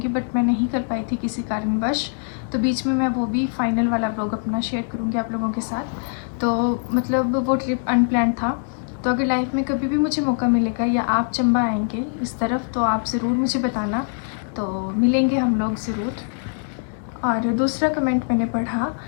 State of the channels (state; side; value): silent; right; 64 dB below the other